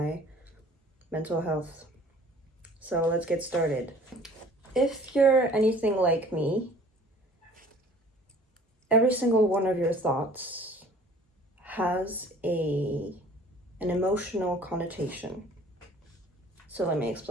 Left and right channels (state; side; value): normal; both; correlation 0.50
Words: mental health. So let's get started. If you're anything like me, every single one of your thoughts has an emotional connotation. So let me